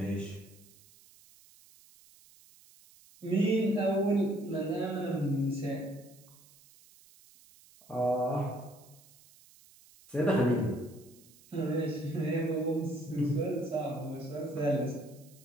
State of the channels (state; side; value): noise; right; hiss, 25 dB below the sound